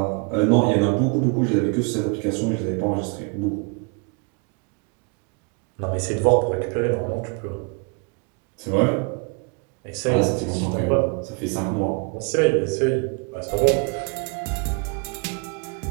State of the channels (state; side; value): quieter; left; 34.0 dB